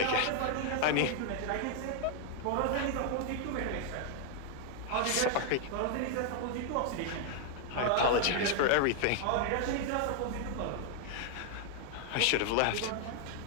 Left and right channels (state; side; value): different; both; correlation 0.00